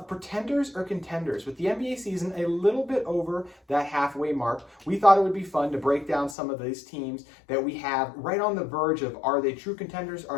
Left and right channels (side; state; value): right; drops out; at 6.4 s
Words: Pretenders or Contenders. With the NBA season a little bit over that halfway mark, we thought it would be fun to break down some of these teams that we have right on the verge of, are they true contenders,